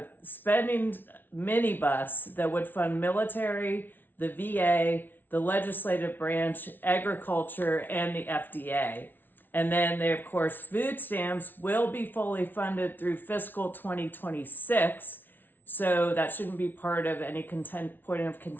spending minibus that would fund military, the VA, the legislative branch, agriculture, and the FDA. And then of course, food stamps will be fully funded through fiscal 2026. So that shouldn't be part of any point of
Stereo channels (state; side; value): late; right; 0.093 ms